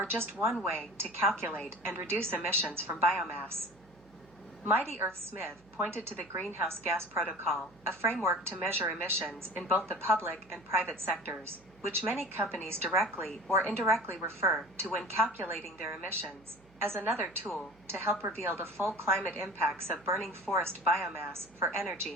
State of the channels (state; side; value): noise; right; hum, 28 dB below the sound